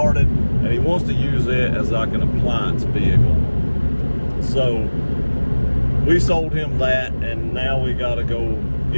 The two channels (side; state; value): both; inverted; correlation -1.00